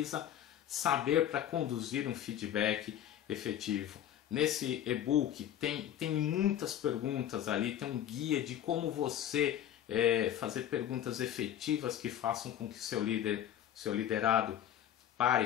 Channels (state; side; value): quieter; right; 10.8 dB